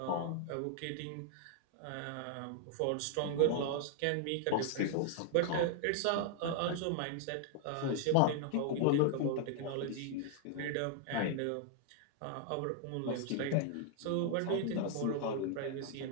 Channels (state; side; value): different; both; correlation -0.01